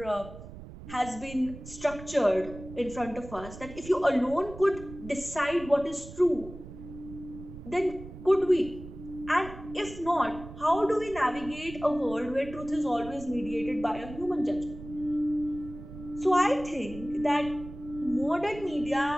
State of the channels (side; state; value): right; noise; rumble, 14 dB below the sound